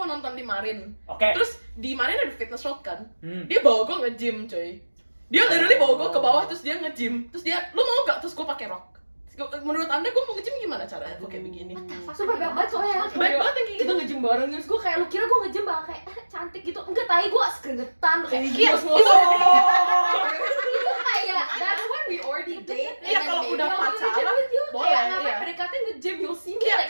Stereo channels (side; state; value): both; inverted; correlation -1.00